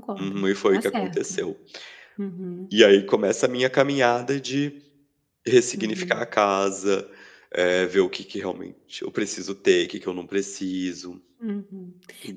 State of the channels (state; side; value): identical; both; correlation 1.00